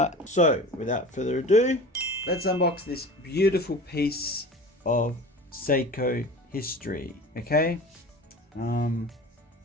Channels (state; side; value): normal; both; correlation 0.37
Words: So without further ado, let's unbox this beautiful piece of Seiko history. Okay,